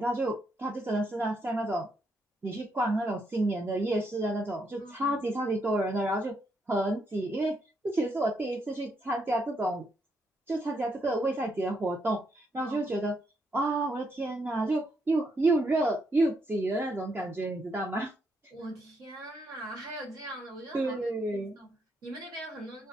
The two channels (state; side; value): normal; both; correlation 0.77